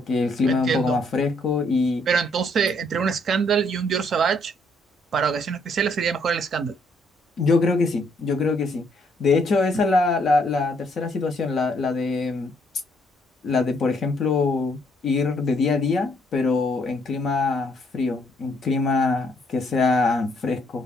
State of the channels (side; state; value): both; normal; correlation 0.69